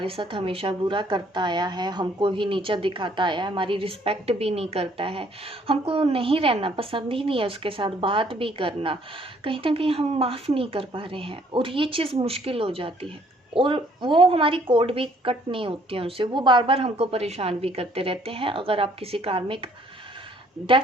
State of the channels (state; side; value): normal; both; correlation 0.62